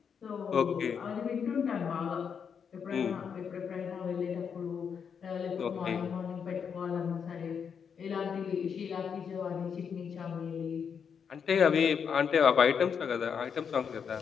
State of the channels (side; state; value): right; quieter; 6.9 dB